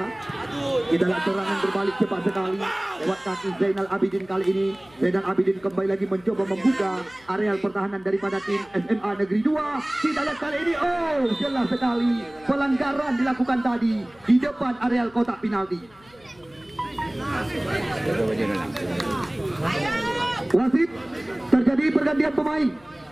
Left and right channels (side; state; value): left; noise; hum, 28 dB below the sound